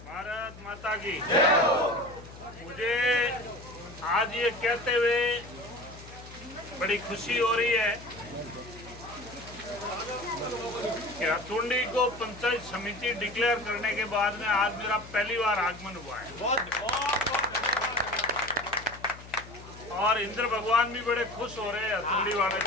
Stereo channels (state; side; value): noise; left; hum, 17 dB below the sound